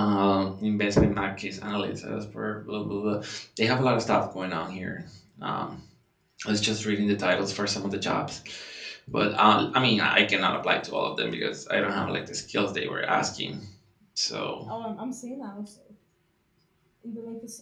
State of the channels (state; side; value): identical; both; correlation 1.00